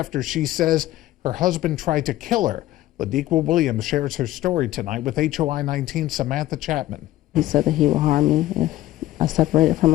she says her husband tried to kill her. Ladiqua Williams shares her story tonight with HOI-19 Samantha Chapman. He said that he would harm me if I separated from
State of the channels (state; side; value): quieter; right; 15.1 dB